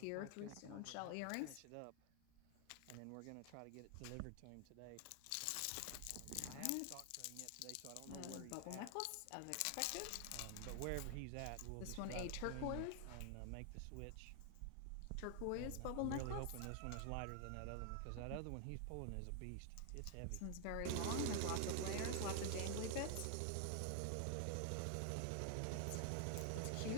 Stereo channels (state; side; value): different; both; correlation 0.00